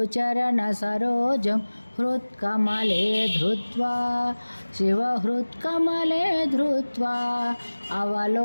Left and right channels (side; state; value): both; inverted; correlation -1.00